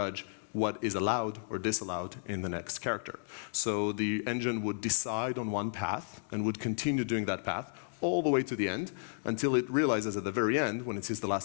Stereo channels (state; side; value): silent; right; digital silence